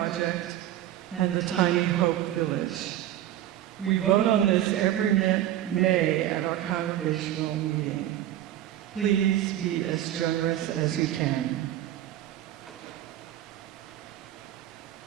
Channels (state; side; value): quieter; left; 12.6 dB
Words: and the Tiny Hope Village. We vote on this every May at our congregational meeting. Please be as generous as you can.